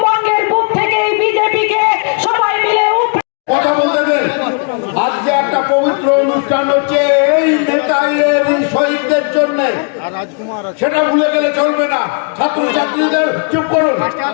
বুক থেকে এই বিজেপিকে সবাই মিলে কথা বলতে দেন। আজকে একটা পবিত্র অনুষ্ঠান হচ্ছে এই নেতাইয়ের শহীদদের জন্য, সেটা ভুলে গেলে চলবে না। ছাত্রছাত্রীদের চুপ করুন,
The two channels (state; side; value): quieter; right; 39.8 dB